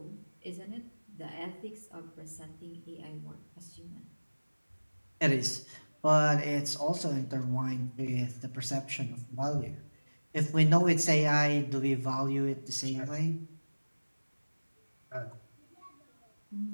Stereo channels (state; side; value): inverted; both; correlation -1.00